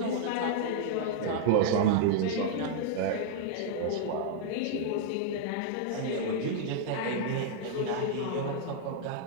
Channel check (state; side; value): different; both; correlation -0.01